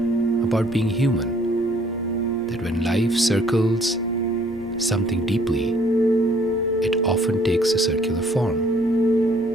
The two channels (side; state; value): both; normal; correlation 0.61